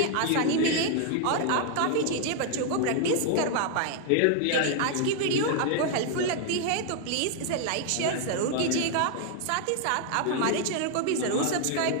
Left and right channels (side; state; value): both; different; correlation 0.00